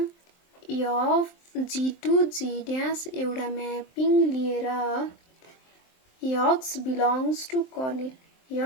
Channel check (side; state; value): right; late; 23 ms